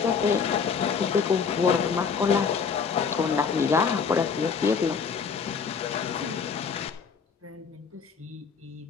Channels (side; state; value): right; quieter; 6.0 dB